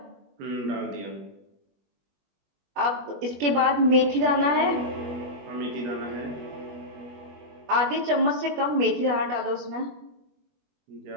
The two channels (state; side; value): late; left; 21 ms